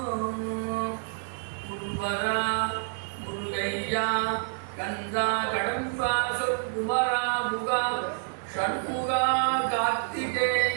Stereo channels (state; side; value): silent; left; 59 dB below the other